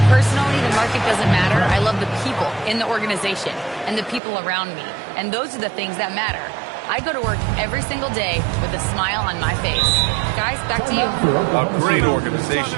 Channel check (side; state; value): left; drops out; at 4.2 s